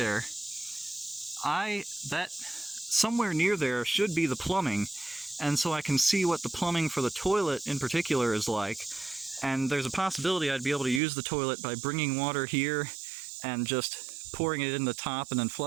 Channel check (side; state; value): left; drops out; at 11.0 s